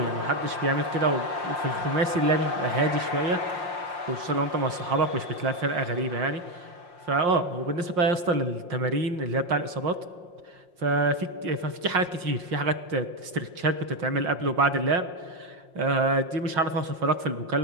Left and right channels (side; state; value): left; late; 5.6 ms